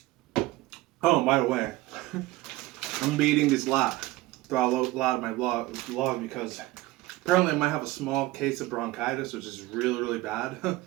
Oh, and by the way, I'm be eating this lot throughout a lot of my vlog because apparently I might have a small case of bronchitis, which is really, really bad.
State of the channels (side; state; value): left; quieter; 18.7 dB